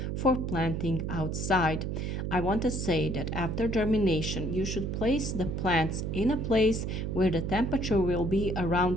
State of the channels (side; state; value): right; noise; hum, 2 dB below the sound